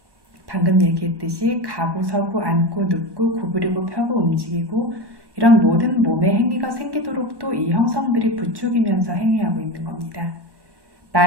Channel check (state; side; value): late; left; 1.1 ms